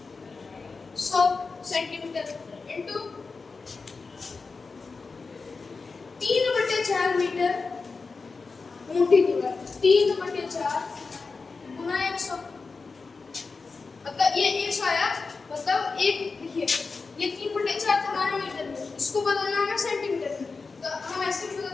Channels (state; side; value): quieter; right; 4.4 dB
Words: सेंटीमीटर इंटू 3/4 मीटर मोटी दीवार 3/4 गुना 100 मतलब ये 100 आया मतलब एक लिखिए ये 3/4 हमारे मीटर में इसको बदलना है सेंटीमीटर में तो हम ऐसे भी बदल